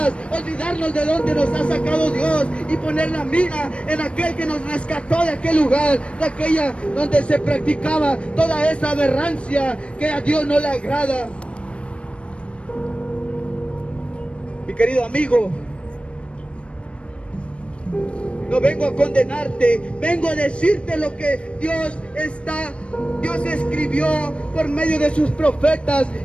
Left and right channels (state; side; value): late; right; 0.059 ms